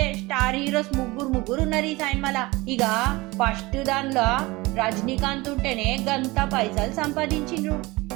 స్టార్ హీరోస్ ముగ్గురు ఉన్నారు ఈ సినిమాలా. ఇక ఫస్ట్ దానిలో రజనీకాంత్ ఉంటేనే గంత పైసలు సంపాదించిండ్రు.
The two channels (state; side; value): quieter; left; 22.1 dB